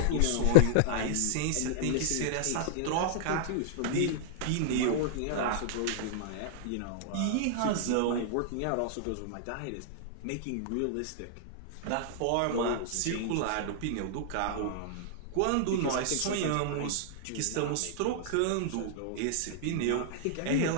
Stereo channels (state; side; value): different; both; correlation -0.01